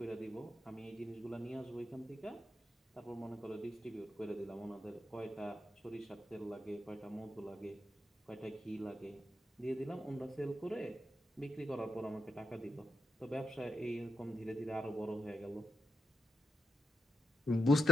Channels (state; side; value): normal; both; correlation 0.82